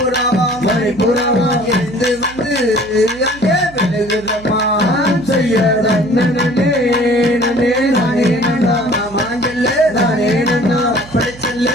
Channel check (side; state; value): right; noise; hum, 20 dB below the sound